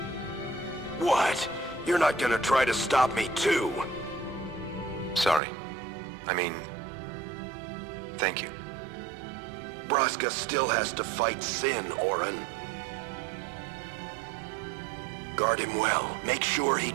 What? You're not gonna try to stop me too? Sorry. I mean, thank you. Braska still has to fight Sin, Auron. Guard him well. Make sure he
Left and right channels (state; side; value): drops out; left; at 5.4 s